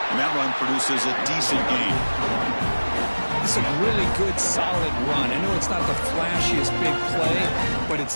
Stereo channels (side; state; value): both; inverted; correlation -1.00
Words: And that run produces a decent gain. This is a really good, solid run. I know it's not the flashiest big play, but it's